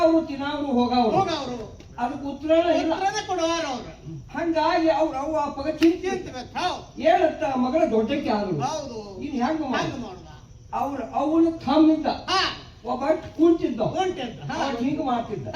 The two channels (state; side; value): identical; both; correlation 1.00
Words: ಅವ್ರು ತಿನ್ನವ್ರು ಹೋಗವ್ರು ಹೋಗವ್ರು. ಅದಕ್ಕೆ ಉತ್ತರನೇ ಇಲ್ಲ. ಉತ್ತರನೇ ಕೊಡುವಾರ ಅವ್ರು. ಹಂಗಾಗಿ ಅವ್ರ ಅವ್ವ ಅಪ್ಪಗ ಚಿಂತೆ ಚಿಂತಿಬೇಕು. ಹೌದು. ಏನಂತ ಮಗಳ ದೊಡ್ಡಕ್ಕೆ ಆದ್ರು ಹೌದು. ಇನ್ ಹೆಂಗ ಹಂಗ ಮಾಡುದ. ಅವನು ಥಮ್ಮಿದ್ದ ಹಾ. ಒಬ್ಬ ಕುಂತಿದ್ದ ಉಂಟಿದ್ದ. ಹಾ. ಅವ್ನು ಹಿಂಗ ಮಾಡ್ತಿದ್ದ